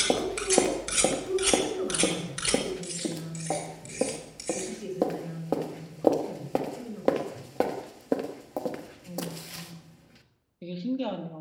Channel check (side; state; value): both; identical; correlation 1.00